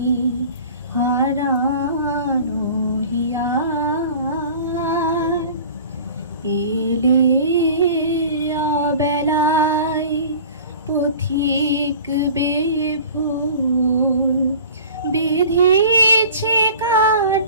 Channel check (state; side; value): inverted; both; correlation -0.43